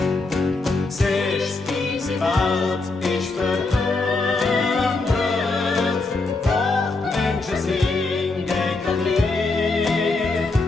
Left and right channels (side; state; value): right; quieter; 3.5 dB